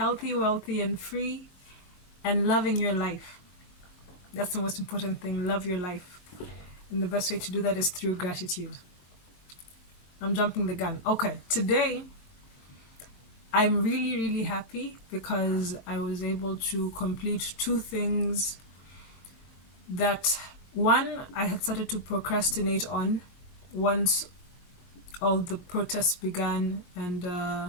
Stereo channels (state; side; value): late; right; 22 ms